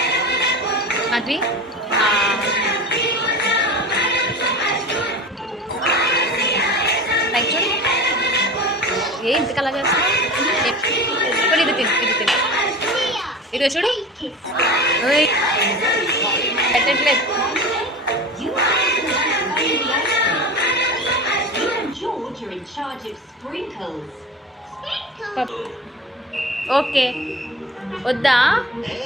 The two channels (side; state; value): both; normal; correlation 0.32